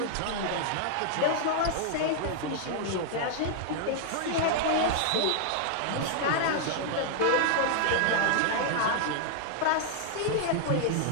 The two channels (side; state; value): both; different; correlation -0.01